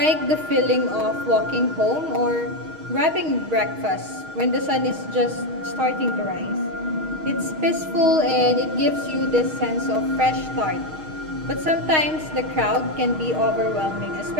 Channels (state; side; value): late; left; 6.4 ms